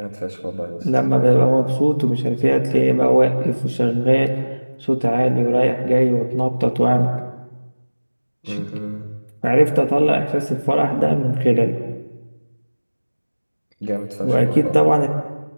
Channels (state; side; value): inverted; both; correlation -1.00